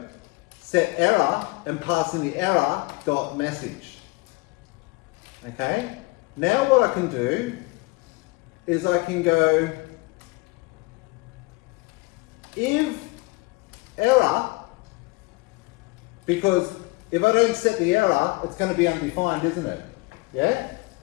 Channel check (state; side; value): quieter; right; 24.8 dB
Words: set error and pass in the error .message. Okay? Now what I can do is I can go if error, because if I don't set the error, it's going to be undefined, isn't it? Yeah?